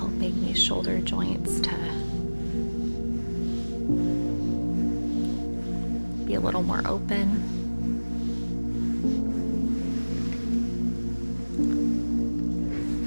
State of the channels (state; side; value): inverted; both; correlation -1.00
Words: these shoulder joints to be a little more open.